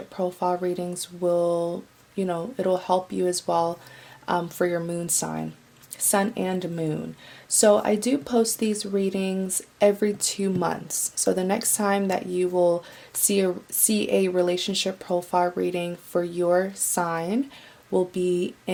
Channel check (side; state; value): both; identical; correlation 1.00